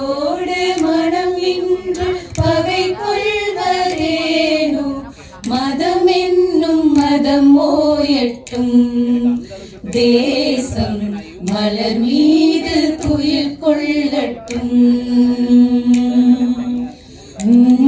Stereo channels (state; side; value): identical; both; correlation 1.00